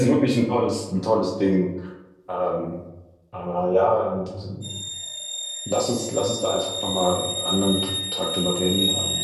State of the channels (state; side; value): identical; both; correlation 1.00